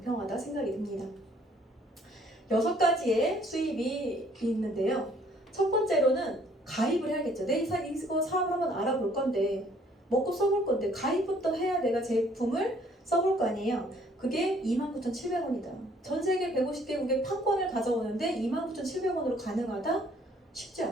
생각이 듭니다. 6가지의 수입이 있는데요. 첫 번째로는 가입을 해야겠죠. 내 이거 사업을 한번 알아볼 건데 먹고 써볼 건데 가입부터 해야 내가 제품을 써볼 거 아니에요. 그게 29,700원이다. 전 세계 150개국의 판권을 가져오는데 29,700원으로 가능하다? 쉽지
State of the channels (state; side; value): normal; both; correlation 0.61